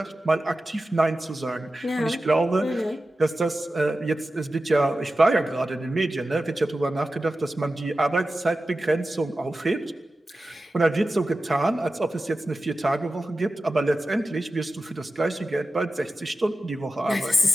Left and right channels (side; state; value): both; normal; correlation 0.93